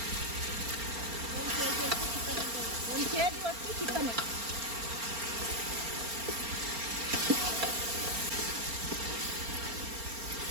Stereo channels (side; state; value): left; late; 4.3 ms